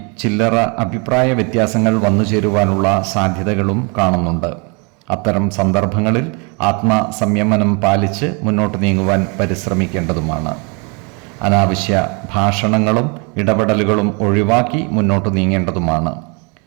ചില്ലറ അഭിപ്രായ വ്യത്യാസങ്ങൾ വന്നുചേരുവാനുള്ള സാധ്യതകളും കാണുന്നുണ്ട്. അത്തരം സന്ദർഭങ്ങളിൽ ആത്മസംയമനം പാലിച്ച് മുന്നോട്ട് നീങ്ങുവാൻ പരിശ്രമിക്കേണ്ടതുമാണ്. അനാവശ്യ ഭാഷണങ്ങളും ഇടപെടലുകളും ഒഴിവാക്കി മുന്നോട്ട് നീങ്ങേണ്ടതുമാണ്.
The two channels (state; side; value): quieter; left; 32.9 dB